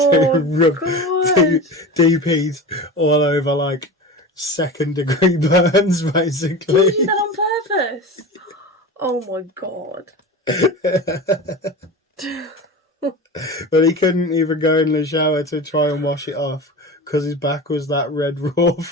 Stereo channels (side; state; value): both; normal; correlation 0.30